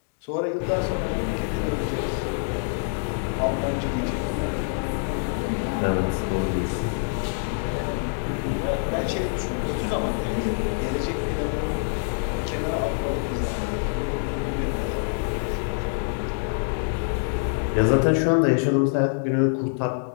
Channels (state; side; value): silent; right; digital silence